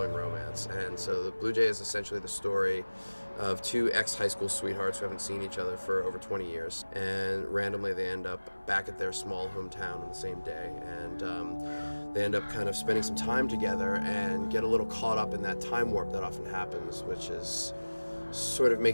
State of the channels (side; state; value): both; inverted; correlation -1.00